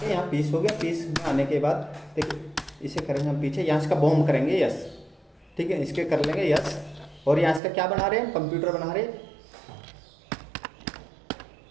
यहाँ पीस हो गया। पीस में आने के बाद देखिए इसे करेंगे हम पीछे, यहाँ इसका बॉम्ब करेंगे, यस, ठीक है। इसके कर लेंगे यस। और यहाँ इसका क्या बना रहे हैं, कंप्यूटर बना रहे हैं,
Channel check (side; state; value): left; drops out; at 7.6 s